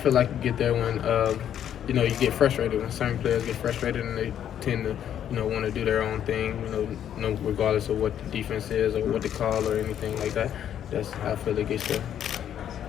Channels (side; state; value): right; quieter; 9.9 dB